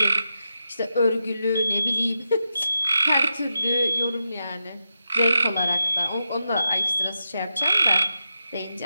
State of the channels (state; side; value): inverted; both; correlation -0.88